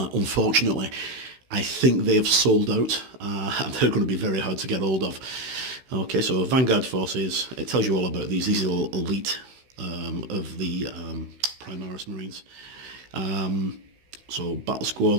I think they have sold out, and they're going to be very hard to get hold of. Okay, so Vanguard Forces, it tells you all about these. These are elite of the Primaris Marines. So battle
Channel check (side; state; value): left; late; 16 ms